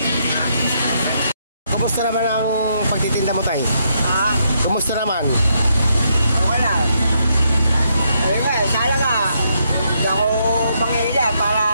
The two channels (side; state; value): both; inverted; correlation -0.76